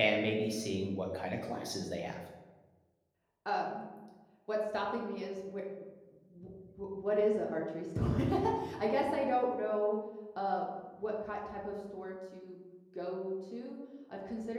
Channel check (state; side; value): identical; both; correlation 1.00